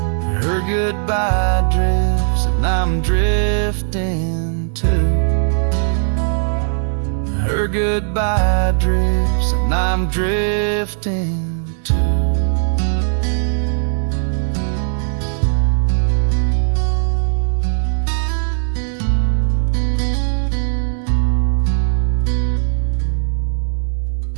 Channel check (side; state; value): left; silent; digital silence